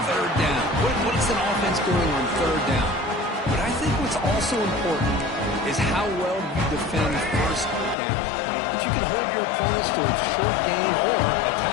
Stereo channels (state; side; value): drops out; right; at 8.0 s